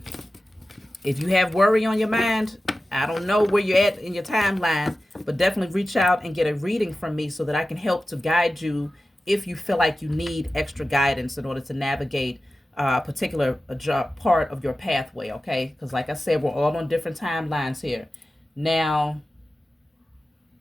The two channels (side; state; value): both; normal; correlation 0.95